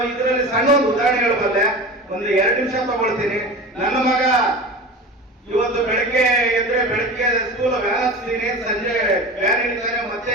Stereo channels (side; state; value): both; normal; correlation 0.31